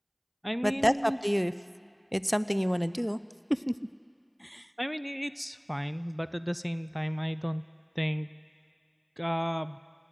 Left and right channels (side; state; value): both; identical; correlation 1.00